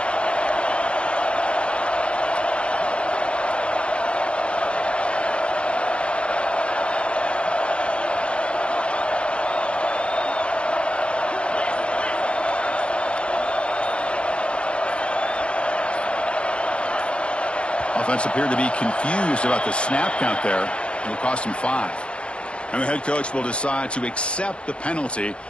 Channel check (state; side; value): late; right; 0.059 ms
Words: Offense appeared to be confused about the snap count there. It will cost him 5. And the head coach will decide to accept the penalty